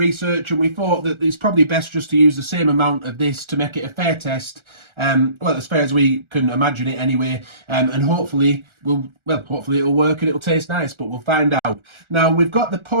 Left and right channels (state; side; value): late; left; 1.4 ms